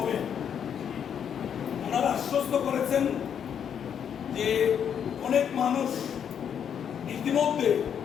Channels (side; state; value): right; quieter; 8.2 dB